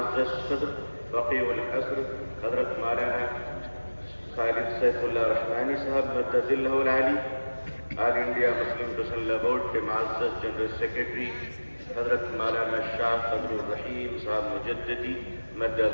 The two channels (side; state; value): both; inverted; correlation -1.00